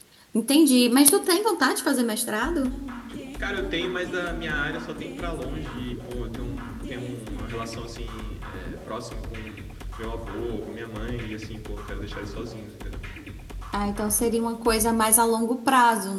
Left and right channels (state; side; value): identical; both; correlation 1.00